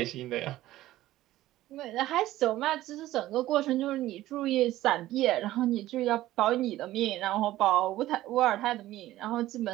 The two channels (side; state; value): left; quieter; 15.3 dB